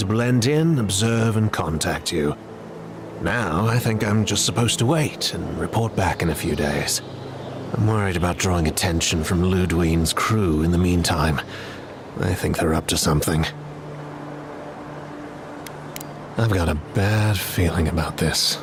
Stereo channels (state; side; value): identical; both; correlation 1.00